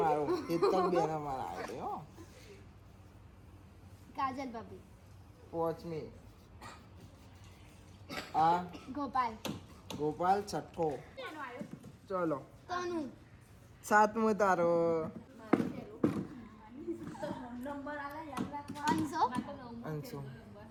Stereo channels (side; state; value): both; identical; correlation 1.00